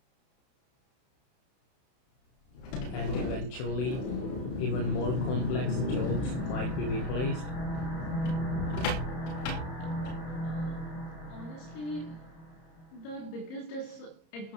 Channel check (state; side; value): late; right; 30 ms